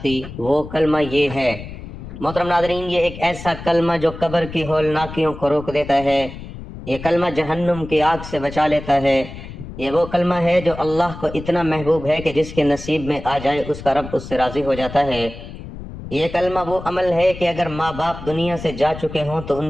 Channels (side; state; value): left; noise; rumble, 12 dB below the sound